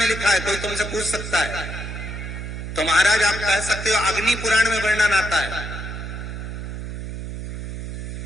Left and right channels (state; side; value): noise; right; hum, 7 dB below the sound